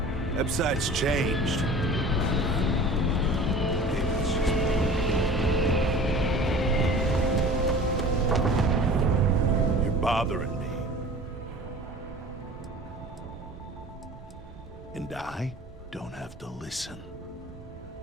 Website's changed. Maybe it's just me. You're bothering me. And I don't have to listen.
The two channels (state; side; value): normal; both; correlation 0.41